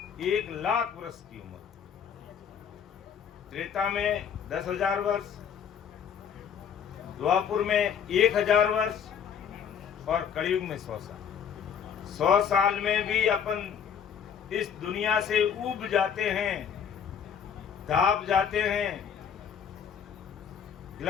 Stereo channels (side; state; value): right; quieter; 7.7 dB